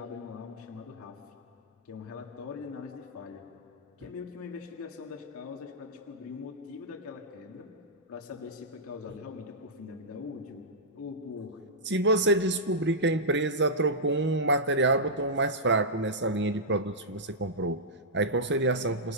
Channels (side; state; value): both; normal; correlation -0.11